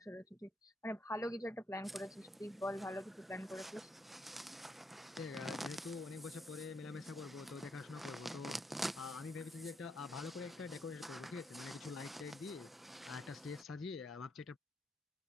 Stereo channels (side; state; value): both; normal; correlation 0.77